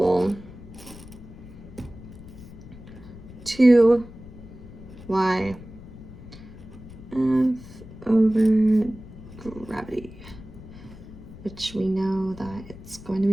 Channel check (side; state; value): left; noise; rumble, 16 dB below the sound